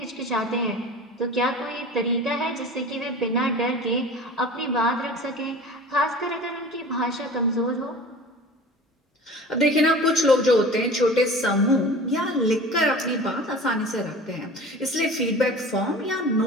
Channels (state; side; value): normal; both; correlation 0.39